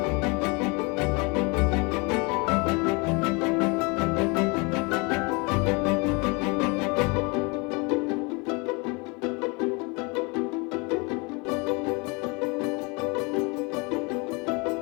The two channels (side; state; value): right; quieter; 29.3 dB